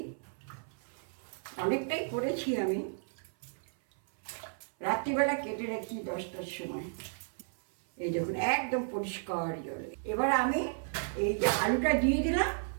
অনেকটাই করেছি আমি, রাত্রিবেলা কেটে রাখি 10টার সময়। এই দেখুন একদম পরিষ্কার জল। এবার আমি এই যে আলুটা দিয়ে দিলাম,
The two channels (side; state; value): left; silent; 56 dB below the other